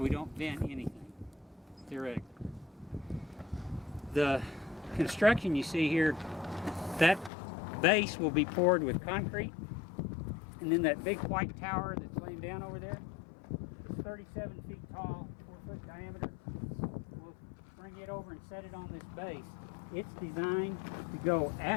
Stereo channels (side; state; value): right; drops out; at 7.3 s